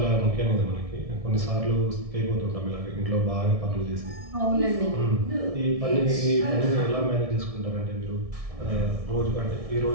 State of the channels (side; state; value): left; late; 1.6 ms